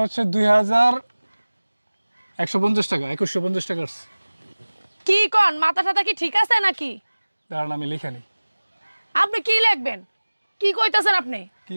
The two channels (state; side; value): inverted; both; correlation -1.00